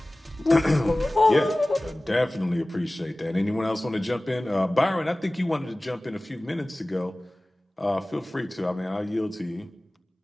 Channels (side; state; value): both; normal; correlation 0.98